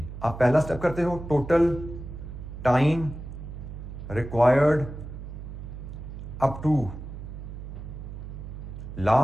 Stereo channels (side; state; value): right; noise; hum, 10 dB below the sound